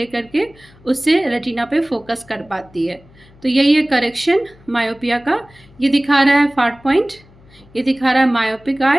करके उससे रेटिना पे फोकस कर पाती है। तो यही है करेक्शन मायोपिया का। ये दिखा रहा है फार पॉइंट, ये दिखा रहा है मायोपिक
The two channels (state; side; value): noise; left; hum, 26 dB below the sound